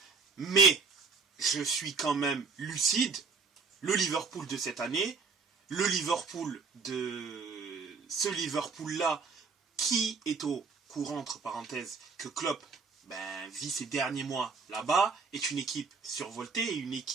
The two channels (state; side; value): quieter; left; 4.8 dB